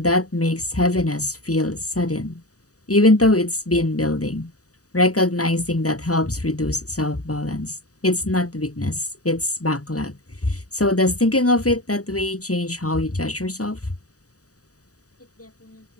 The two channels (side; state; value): right; late; 0.66 ms